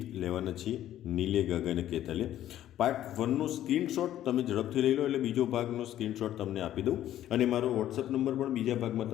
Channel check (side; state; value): right; quieter; 12.3 dB